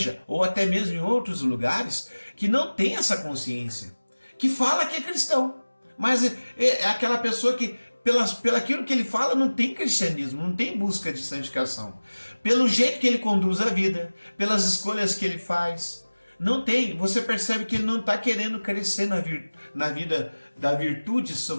ou até mesmo em outros lugares, que não tem essa consciência. Que fala que é cristão. Mas é aquela pessoa que Pelaquilo que ele fala, não tem cristianismo, não tem busca de santificação. Pelo jeito que ele conduz a vida, pelas escolhas que ele faz, não tem. Você percebe que ele não está querendo crescer na vida da virtude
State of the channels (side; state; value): both; inverted; correlation -1.00